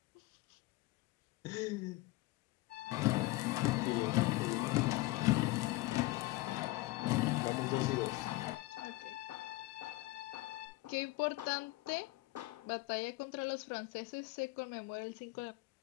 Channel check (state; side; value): quieter; right; 20.3 dB